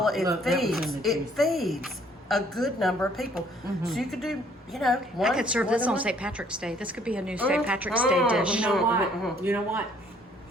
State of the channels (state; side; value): normal; both; correlation 0.61